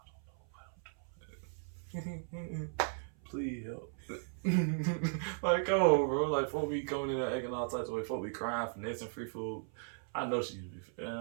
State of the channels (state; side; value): silent; left; 53 dB below the other